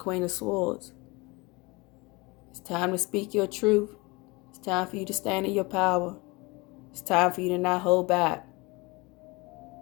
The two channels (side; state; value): right; quieter; 25.3 dB